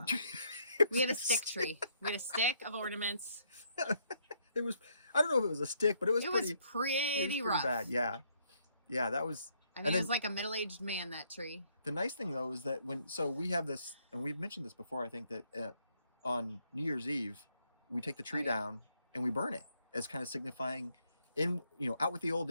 it. We had a stick tree. We had a stick of ornaments. It was, I don't know if it was a stick, but it was pretty rough. Bad. Yeah. Yeah, that was. I mean, it was like a middle-aged man, that tree. The nice thing though is that so we have this, and we've mentioned this before, I think, that on New Year's Eve, we take the tree down and we burn it as kind of signifying out with the old,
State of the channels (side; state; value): both; inverted; correlation -0.71